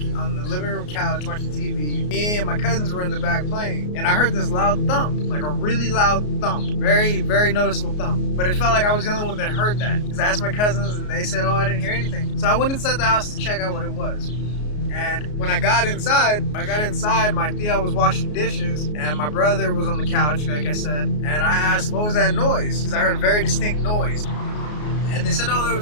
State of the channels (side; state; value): right; late; 33 ms